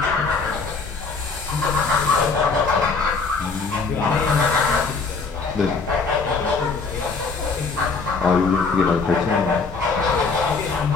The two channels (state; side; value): quieter; right; 4.5 dB